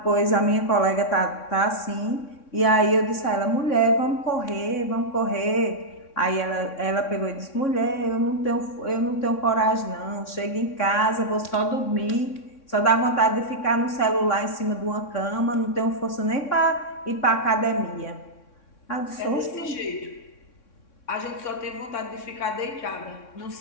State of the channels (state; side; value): late; right; 3.6 ms